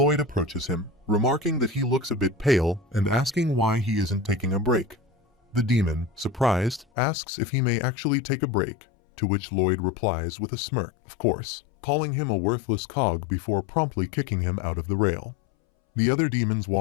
approaches him, remarking that he looks a bit pale and asking why he isn't taking a break. The demon, surprised, asks if he may actually take a break, to which Lloyd replies with a smirk, of course, calling him a worthless cog before promptly kicking him out of the rail. The other demons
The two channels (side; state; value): right; drops out; at 6.9 s